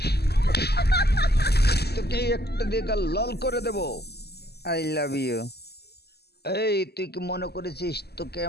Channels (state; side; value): late; right; 0.47 ms